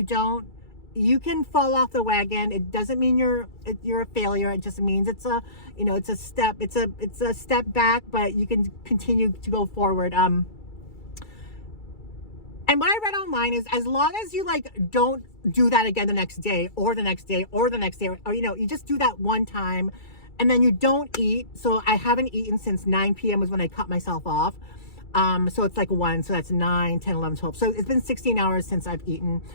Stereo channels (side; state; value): right; late; 2.3 ms